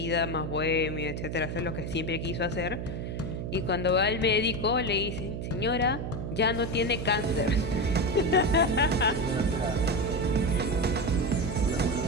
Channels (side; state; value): right; noise; hum, 5 dB below the sound